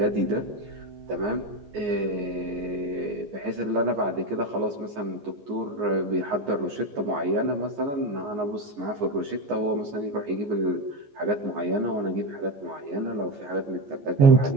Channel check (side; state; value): left; late; 14 ms